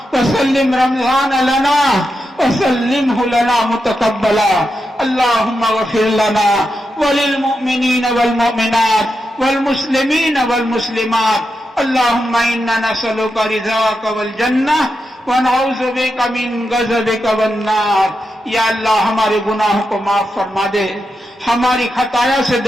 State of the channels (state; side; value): normal; both; correlation 0.87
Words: وسلم رمضان لنا وسلمه لنا متقبلا. اللهم اغفر لنا وللمؤمنين والمؤمنات والمسلمين والمسلمات. اللهم إنا نسألك رضاك والجنة ونعوذ بك من غضبك والنار. یا اللہ ہمارے گناہوں کو معاف فرما دے، ہماری خطایا سے